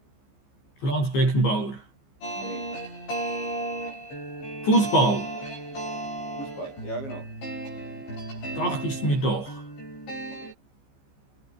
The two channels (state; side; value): late; right; 15 ms